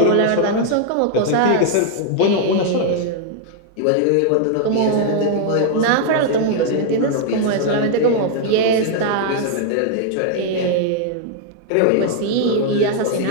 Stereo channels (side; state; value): both; different; correlation 0.00